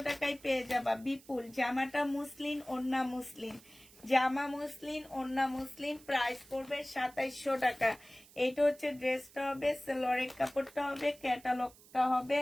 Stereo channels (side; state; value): right; noise; hiss, 24 dB below the sound